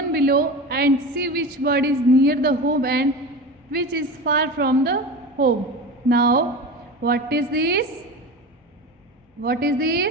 below and see which bird is near the home and which is far from the home. Now, what is this? What is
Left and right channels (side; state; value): both; normal; correlation 0.28